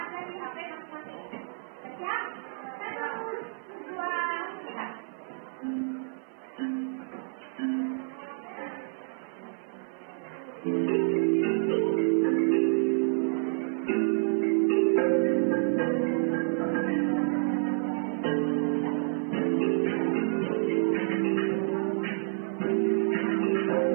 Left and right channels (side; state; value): left; silent; 56 dB below the other